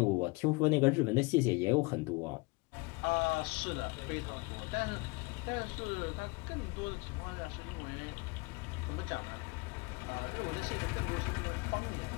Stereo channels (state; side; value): quieter; right; 26.9 dB